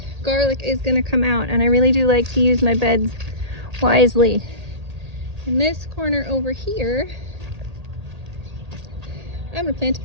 garlic is going to come out, and I really do like to use my beds wisely, in this corner over here I'm going to plant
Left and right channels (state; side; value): late; left; 1.8 ms